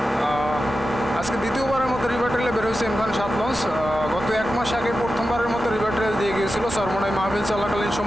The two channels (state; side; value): normal; both; correlation 0.92